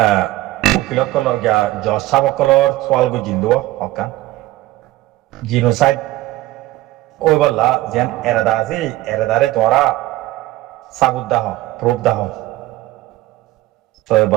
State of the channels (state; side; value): quieter; left; 17.2 dB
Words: উকিল কলর গিয়া জজ সাহেব কলর সোয়াল গো জিন্দো হকান জিনোসাইড ওই বললা যেন এরাদা আছে এরাদারে তোরা সাবুত দাহ প্রুফ দাহ তো